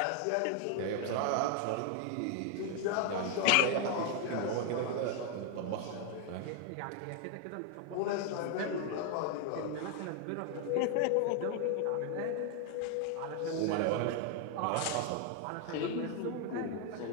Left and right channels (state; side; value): different; both; correlation 0.00